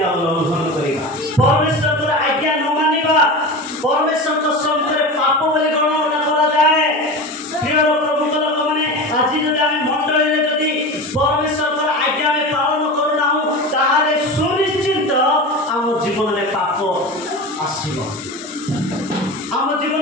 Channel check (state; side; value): normal; both; correlation 0.28